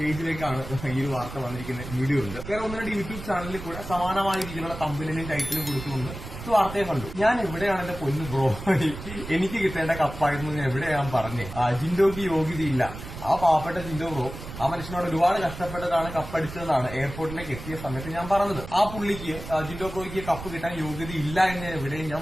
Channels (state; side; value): noise; right; rumble, 11 dB below the sound